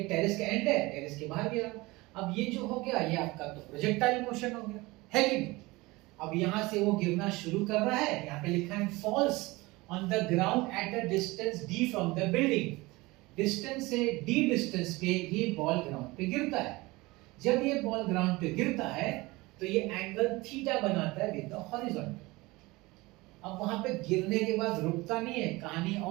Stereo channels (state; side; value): quieter; left; 22.0 dB